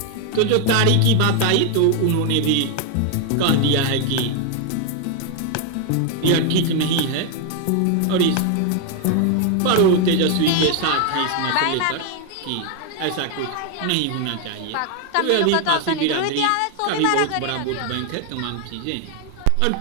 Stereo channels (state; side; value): different; both; correlation 0.01